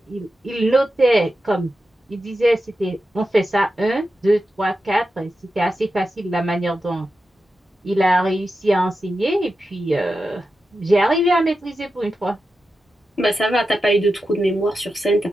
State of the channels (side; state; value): both; normal; correlation 0.90